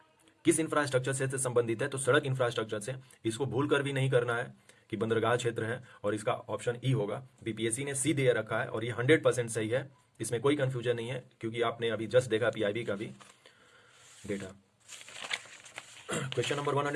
किस इंफ्रास्ट्रक्चर से संबंधित है, तो सड़क इंफ्रास्ट्रक्चर से। इसको भूल कर भी नहीं करना है कि बंदरगाह क्षेत्र है, और इसका ऑप्शन ई होगा। बीपीएससी ने सी दे रखा है और ये 100% सही है, इसमें कोई कंफ्यूजन नहीं है, क्योंकि आपने अभी जस्ट देखा पीआईबी का भी डेटा। क्वेश्चन नंबर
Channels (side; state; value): both; identical; correlation 1.00